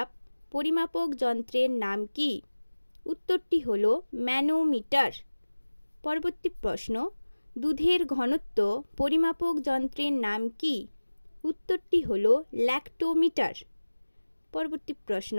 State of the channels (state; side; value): inverted; both; correlation -1.00